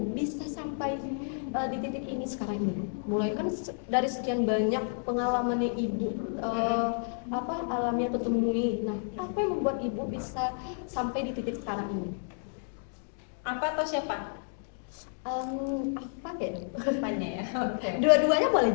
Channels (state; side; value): silent; right; digital silence